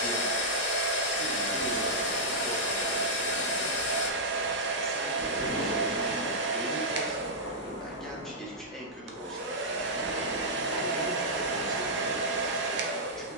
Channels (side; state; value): both; normal; correlation -0.09